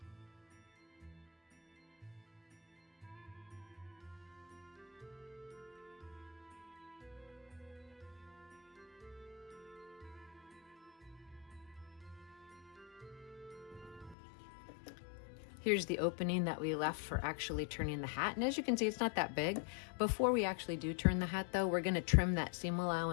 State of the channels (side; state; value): right; drops out; at 14.2 s